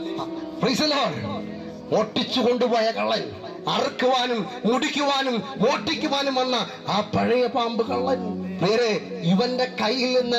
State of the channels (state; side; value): identical; both; correlation 1.00